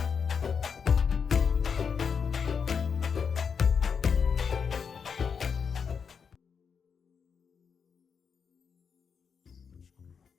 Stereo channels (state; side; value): quieter; right; 6.3 dB